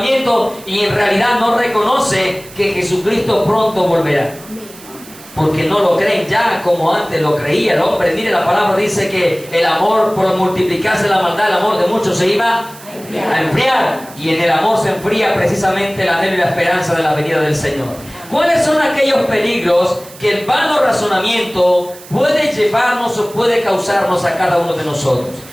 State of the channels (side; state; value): right; noise; hiss, 19 dB below the sound